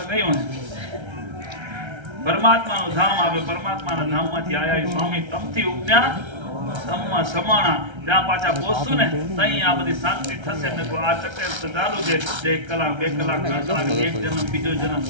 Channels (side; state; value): left; late; 1.3 ms